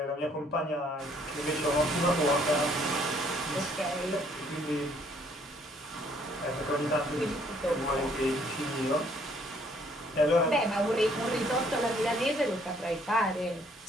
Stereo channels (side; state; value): both; normal; correlation 0.64